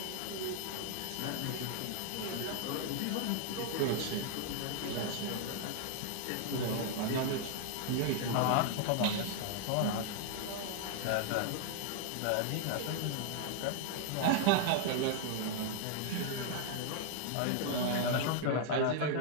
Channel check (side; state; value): both; different; correlation 0.00